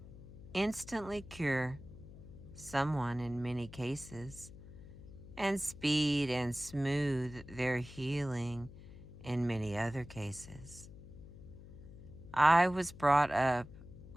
instantly cure someone in many cases and speed and smooth their healing in many other cases. I was brought up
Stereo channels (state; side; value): noise; left; hum, 16 dB below the sound